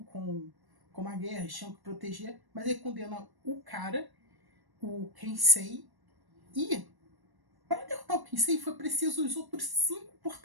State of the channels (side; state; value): left; late; 1.1 ms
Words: com uma guerra, eles tinham que proteger, mas ele condena o cara, o Kensei, e para derrotar o Kensei foi preciso os outros 5